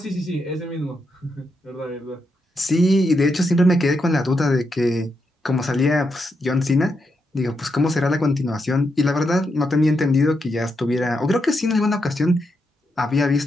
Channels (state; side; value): normal; both; correlation 0.83